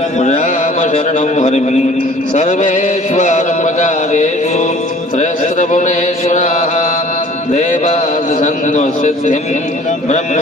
रामशरणं हरिं सर्वेष्वारम्भकार्येषु त्रयस्त्रपुणेश्वराः देवादिसन्नसिद्धिं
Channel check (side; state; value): both; normal; correlation 0.51